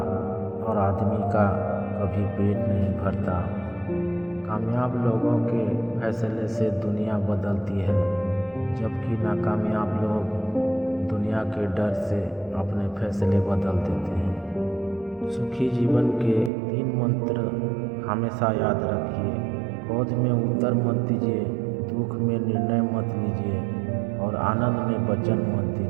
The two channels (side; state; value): left; drops out; at 16.5 s